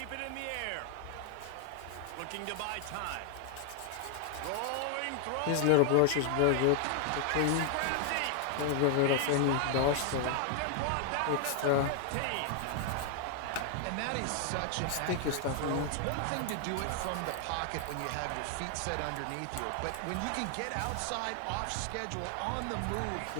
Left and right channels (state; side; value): different; both; correlation 0.00